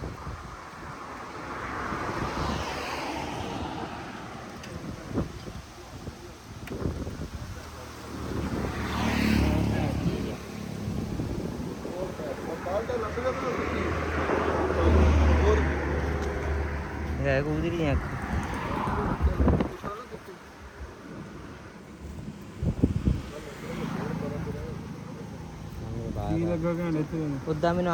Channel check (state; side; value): identical; both; correlation 1.00